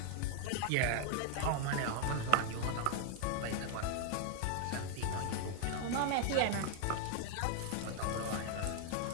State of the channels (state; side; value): different; both; correlation 0.00